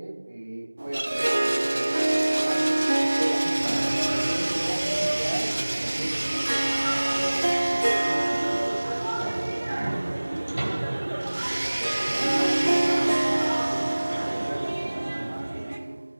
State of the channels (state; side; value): inverted; both; correlation -1.00